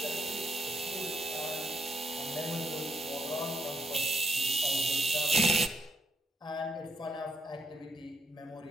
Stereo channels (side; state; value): both; normal; correlation 0.76